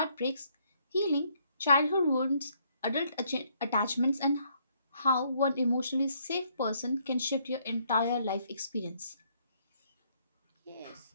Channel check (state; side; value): inverted; both; correlation -0.69